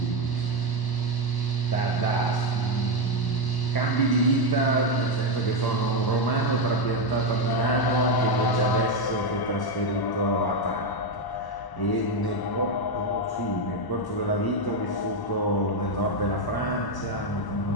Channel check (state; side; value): late; right; 1.0 ms